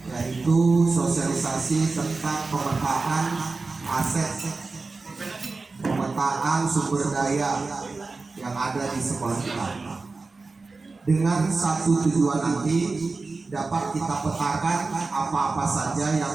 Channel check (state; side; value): quieter; left; 3.8 dB